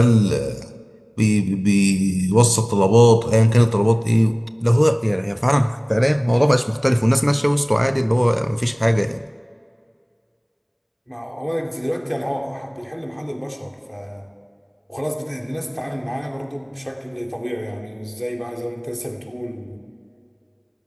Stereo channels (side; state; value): both; identical; correlation 1.00